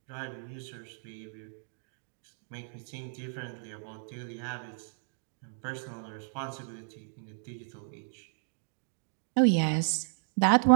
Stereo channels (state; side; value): silent; left; digital silence